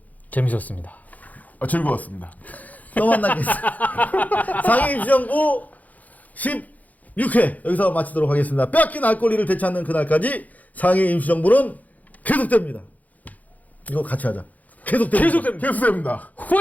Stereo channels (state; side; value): late; right; 0.078 ms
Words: 재밌었습니다. 즐거웠습니다. 또 만나겠습니다. 상임시정부 16회 여기서 마치도록 하겠습니다. 빼앗긴 알 권리를 되찾는 그날까지 상임시정부는 계속됩니다. 이거 같이 하자. 계속됩니다. 계속됩니다.